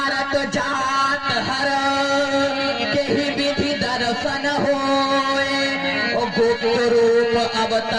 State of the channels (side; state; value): both; identical; correlation 1.00